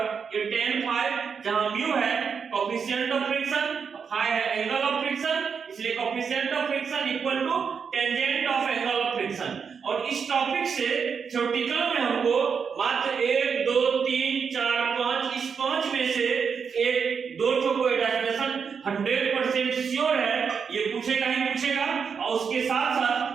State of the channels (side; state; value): left; quieter; 6.3 dB